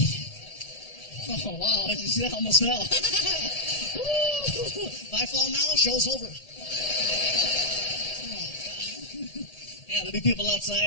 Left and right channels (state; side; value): late; right; 1.7 ms